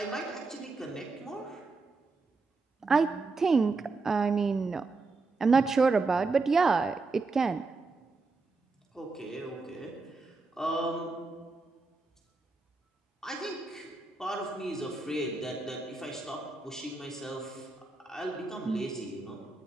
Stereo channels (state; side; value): quieter; left; 3.8 dB